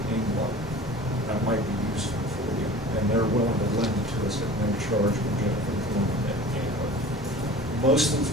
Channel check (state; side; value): normal; both; correlation 0.41